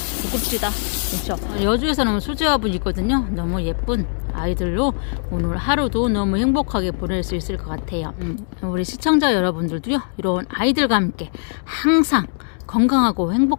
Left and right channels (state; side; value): silent; right; digital silence